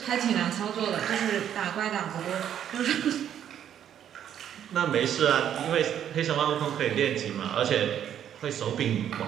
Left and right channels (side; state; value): left; quieter; 9.8 dB